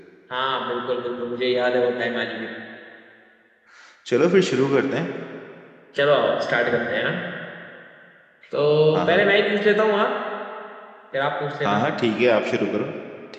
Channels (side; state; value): both; identical; correlation 1.00